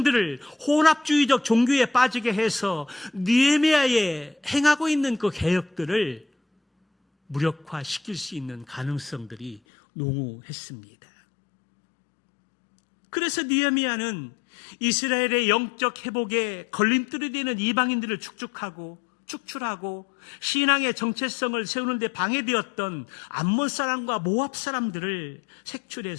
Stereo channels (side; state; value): right; drops out; at 9.6 s